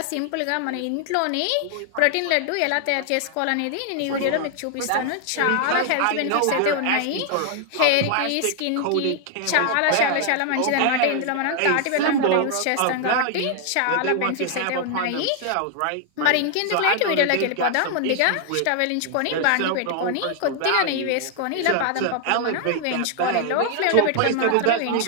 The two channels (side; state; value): both; different; correlation 0.00